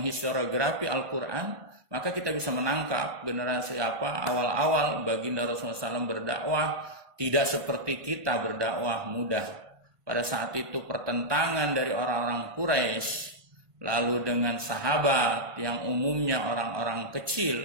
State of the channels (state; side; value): late; left; 1.5 ms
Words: historiografi Al-Quran, maka kita bisa menangkap generasi apa awal-awal baginda Rasulullah SAW berdakwah tidak seperti kita berdakwah mudah. Pada saat itu pertentangan dari orang-orang Quraisy, lalu dengan sahabat yang umumnya orang-orang